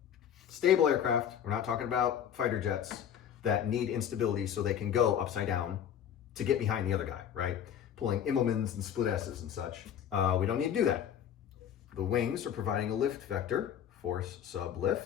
Stable aircraft, we're not talking about fighter jets that need instability so they can go upside down to get behind the other guy, right? Pulling Immelmans and split S's and such. We don't need to do that. The wings are providing a lift vector, force sub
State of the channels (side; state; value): right; quieter; 9.2 dB